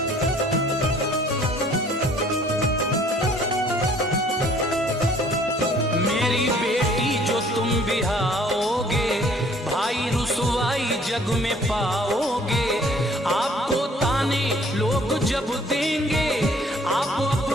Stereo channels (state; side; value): normal; both; correlation 0.57